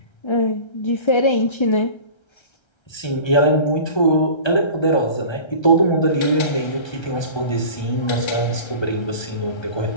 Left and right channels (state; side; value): late; right; 1.3 ms